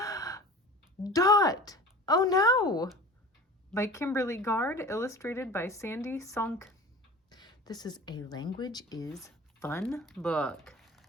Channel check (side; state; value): both; normal; correlation 0.39